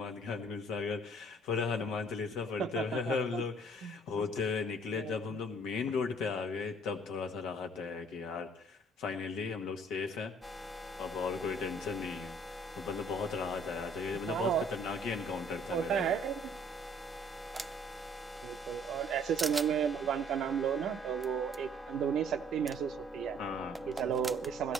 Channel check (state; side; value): normal; both; correlation 0.58